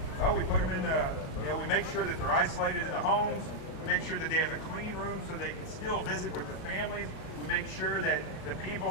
Well, we put them in the, we make sure that they're isolated in the homes. We make sure that they have a clean room so they can still visit with their families. We make sure that the people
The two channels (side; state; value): right; late; 37 ms